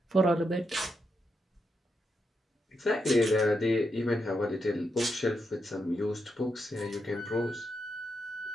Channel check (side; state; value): both; normal; correlation 0.83